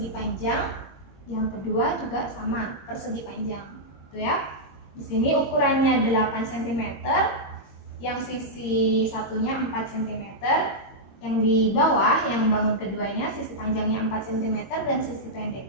panjang, yang kedua juga sama persegi panjang. Tuh ya. Di sini ukurannya 8 cm, yang sisi satunya 4 cm. Yang di bawah, yang bangun keduanya, sisi panjangnya 4 cm dan sisi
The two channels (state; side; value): late; right; 21 ms